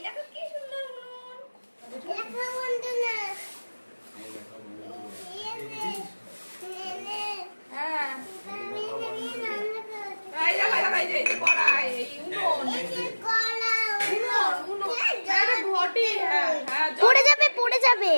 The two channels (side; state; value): both; inverted; correlation -1.00